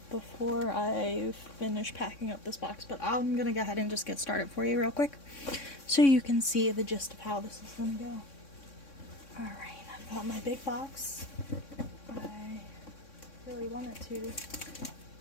before I finish packing up this box. But I'm gonna go ahead and just get started for you real quick, so you can see the gist of how this is gonna go. Alright, I've got my big box. I really wanted to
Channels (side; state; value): right; late; 3.6 ms